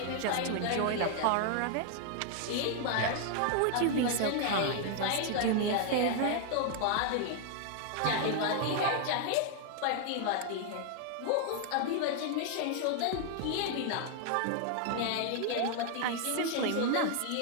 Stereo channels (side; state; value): both; different; correlation 0.00